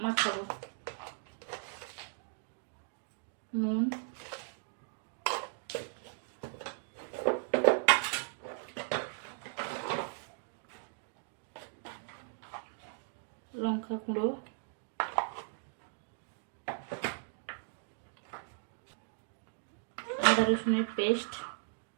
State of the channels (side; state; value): left; silent; digital silence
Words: মাখাবো। নুন, লঙ্কা গুঁড়ো, আদা রসুনের পেস্ট,